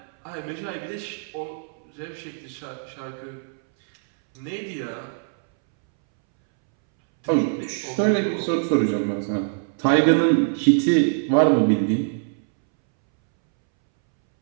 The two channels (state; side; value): silent; left; 63 dB below the other